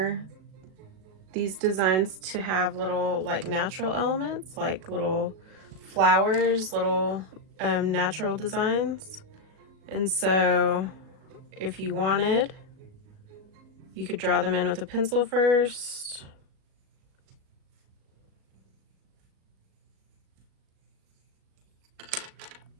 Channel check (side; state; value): left; late; 37 ms